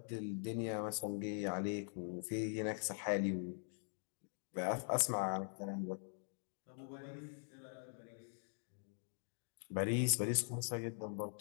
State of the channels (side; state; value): right; silent; digital silence